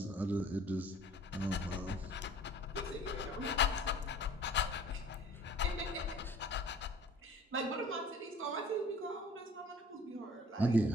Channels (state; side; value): normal; both; correlation 0.49